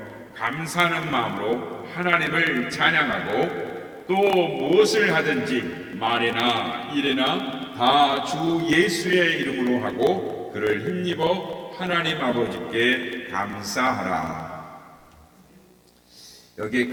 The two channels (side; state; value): both; identical; correlation 1.00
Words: 감사하는 마음으로 하나님을 찬양하고 또 무엇을 하든지 말이나 일이나 다 주 예수의 이름으로 하고 그를 힘입어 하나님 아버지께 감사하라. 여기에